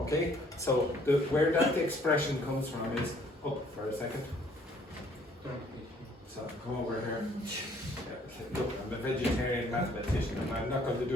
So where that expression comes from is, oh, for a second. So come over here. Look, I'm a vegetarian mathematician and I'm not going to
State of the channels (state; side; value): normal; both; correlation 0.61